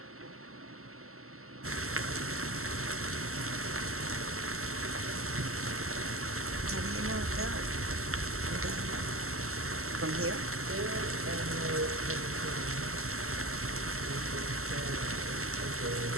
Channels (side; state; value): left; late; 0.63 ms